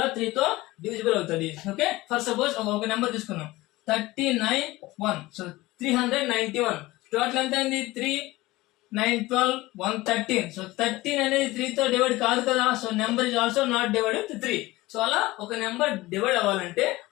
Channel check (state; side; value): quieter; right; 19.3 dB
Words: 3 తో డివిజిబుల్ అవుతుంది. ఓకే, ఫర్ సపోజ్ ఒక నెంబర్ తీసుకున్నాం 39, సో 391. టోటల్ ఎంత అయింది? 3, 9, 12, 113. సో 13 అనేది 3 తో డివైడ్ కాదు కదా. So number is also not divide with 3. So అలా ఒక నెంబర్ డివైడ్ అవ్వాలంటే